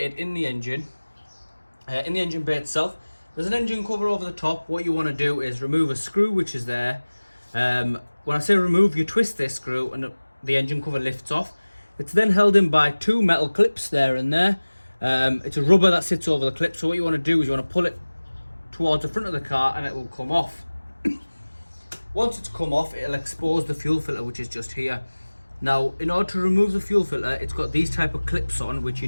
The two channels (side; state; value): both; inverted; correlation -1.00